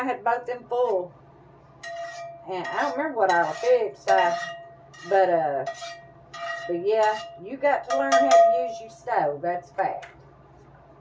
had both them full. And I don't remember what I fixed. But yeah, you got to learn how to use your stove. That's fact.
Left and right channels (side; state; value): both; identical; correlation 1.00